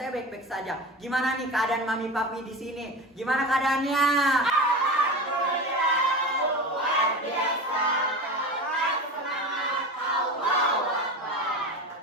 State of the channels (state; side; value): normal; both; correlation 0.28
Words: baik-baik saja. Gimana nih keadaan mami papi di sini? Gimana keadaannya?